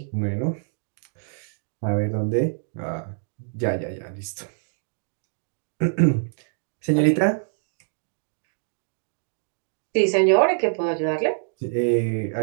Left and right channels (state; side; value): silent; left; digital silence